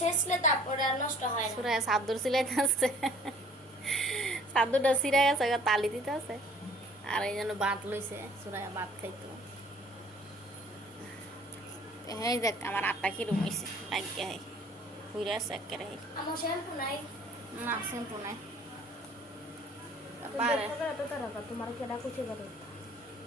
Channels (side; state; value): both; normal; correlation 0.53